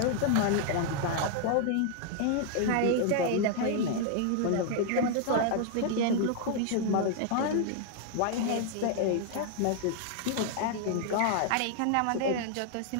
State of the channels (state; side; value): different; both; correlation 0.00